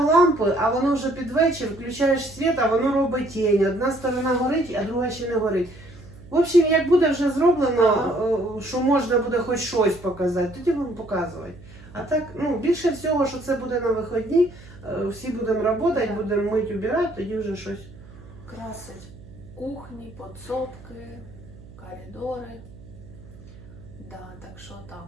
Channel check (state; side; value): noise; right; hum, 19 dB below the sound